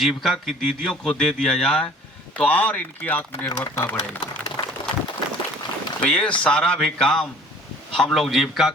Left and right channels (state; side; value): normal; both; correlation 0.51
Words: की दीदियों को दे दिया जाए तो और इनकी आत्मनिर्भरता बढ़ेगी। तो ये सारा भी काम हम लोग जीविका